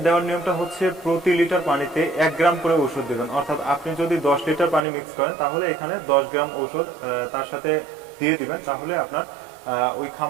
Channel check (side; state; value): left; drops out; at 4.9 s